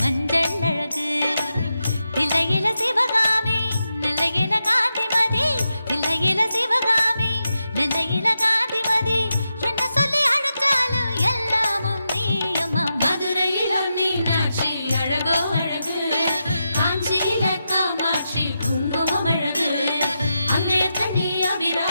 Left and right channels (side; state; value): both; inverted; correlation -0.88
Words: அழகு தில்லையில சிவகாமி நெல்லையில காந்திமதி தில்லையில சிவகாமி நெல்லையில காந்திமதி என்ன சொல்லி அழைச்சாலும் எல்லாமும் நீ அம்மா மதுரையிலும் மீனாட்சி அழகோ அழகு காஞ்சியில காமாட்சி குங்குமம் அழகு அங்கையத்த நீ